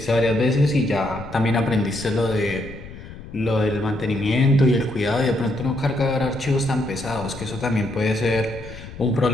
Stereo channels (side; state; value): left; noise; rumble, 14 dB below the sound